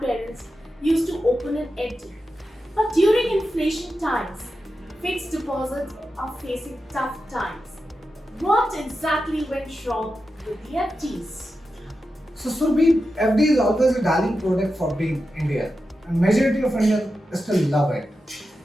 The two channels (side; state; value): both; normal; correlation 0.90